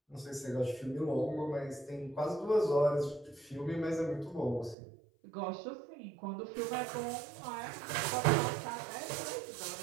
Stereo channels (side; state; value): left; drops out; at 4.8 s